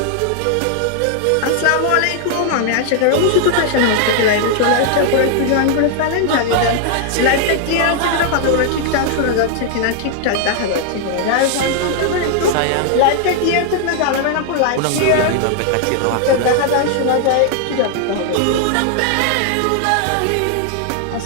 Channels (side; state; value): both; different; correlation 0.00